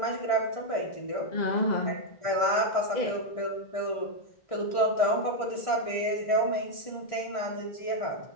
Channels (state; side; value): late; right; 1.6 ms